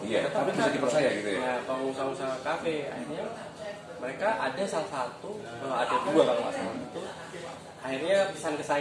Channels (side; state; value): both; identical; correlation 1.00